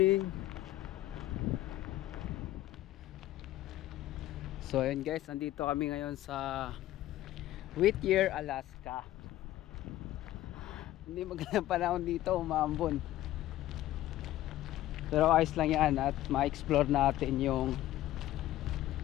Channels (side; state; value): right; quieter; 14.6 dB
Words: So ayun guys, andito kami ngayon sa Whittier, Alaska. Hindi magandang panahon dito, umaambon. Pero ayos lang yan at ma-explore natin yung